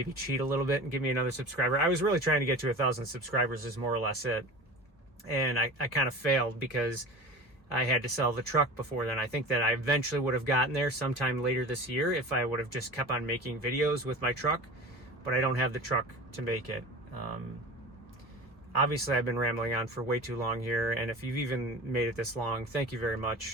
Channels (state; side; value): normal; both; correlation 0.36